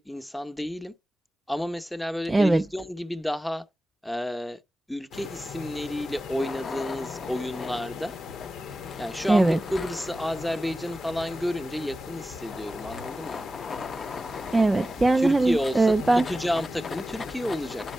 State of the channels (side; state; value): both; normal; correlation 0.94